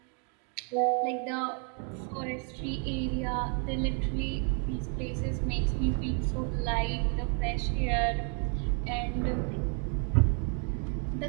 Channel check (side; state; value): left; quieter; 39.3 dB